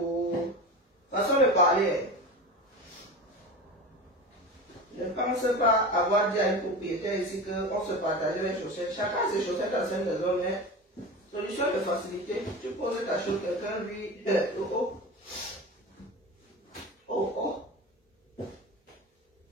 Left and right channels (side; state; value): both; normal; correlation 0.28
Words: façon de parler. Je ne pense pas avoir dit à une propriétaire ici qu'on se partageait les chaussettes. Chacun a ses chaussettes à cette maison, mais solution de facilité. Tu poses ta chose, quelqu'un lui. Oh.